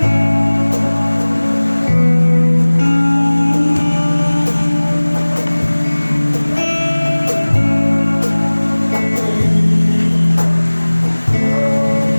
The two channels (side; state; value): both; inverted; correlation -1.00